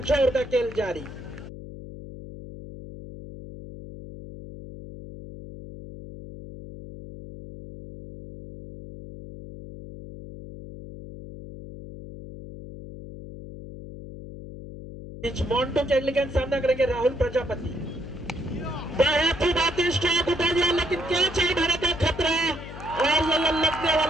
ओवर का खेल जारी। मोंटू की अगली गेंद सामना करेंगे राहुल प्रजापति। बहुत ही बेहतरीन स्ट्रोक उठा दिया, लेकिन कैच है भारत का खतरा। और ये लगने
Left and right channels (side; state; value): left; noise; hum, 13 dB below the sound